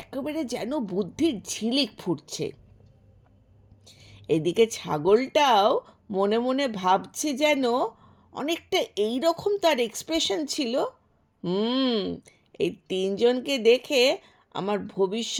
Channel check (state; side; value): identical; both; correlation 1.00